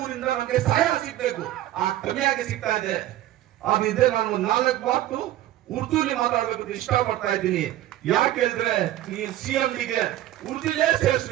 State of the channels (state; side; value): quieter; left; 14.0 dB